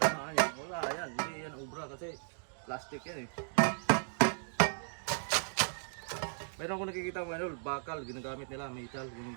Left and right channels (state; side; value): silent; left; digital silence